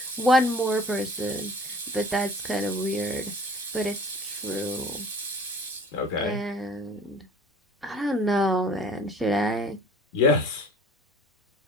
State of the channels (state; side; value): normal; both; correlation 0.49